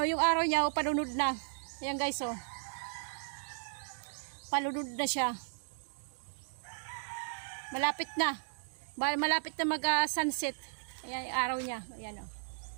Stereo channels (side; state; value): left; silent; digital silence